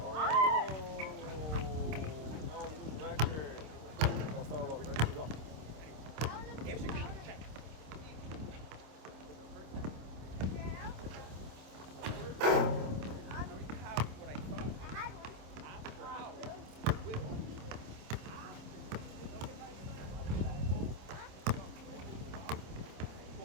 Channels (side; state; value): left; late; 26 ms